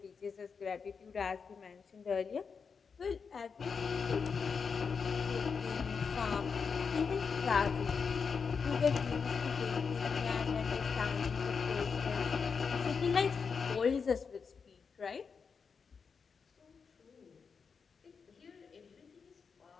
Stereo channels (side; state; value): right; quieter; 5.7 dB